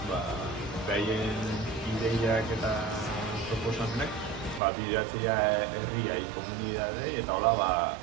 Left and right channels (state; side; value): drops out; left; at 4.6 s